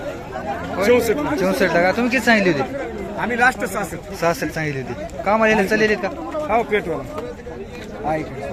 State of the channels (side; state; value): both; identical; correlation 1.00